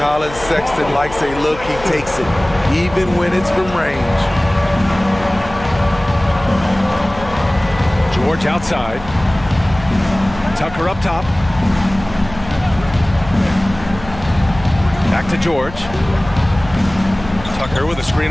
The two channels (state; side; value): noise; left; hum, 15 dB below the sound